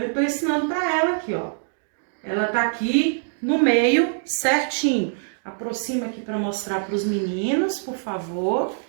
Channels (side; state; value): left; silent; digital silence